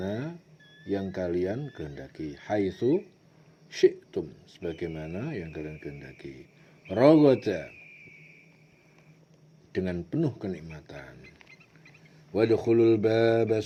yang kalian kehendaki. Haitsu syi'tum, sebagaimana yang kalian kehendaki. Ragada, dengan penuh kenikmatan. Wadkhulul baba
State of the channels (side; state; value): both; identical; correlation 1.00